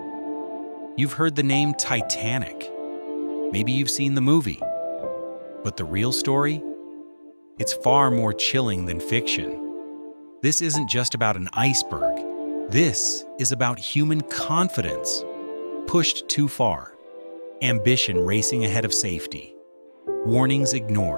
you've heard the name Titanic. Maybe you've seen the movie. But the real story? It's far more chilling than fiction. This isn't just about an iceberg. This is about human confidence pushed too far, ambition racing ahead of safety, warnings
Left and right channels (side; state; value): both; inverted; correlation -1.00